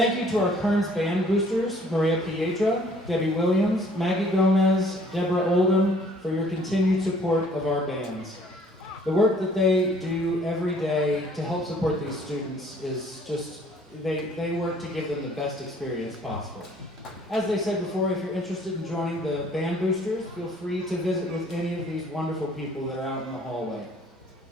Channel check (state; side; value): normal; both; correlation 0.58